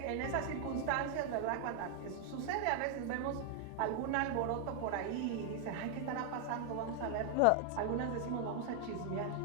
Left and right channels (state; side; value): different; both; correlation 0.00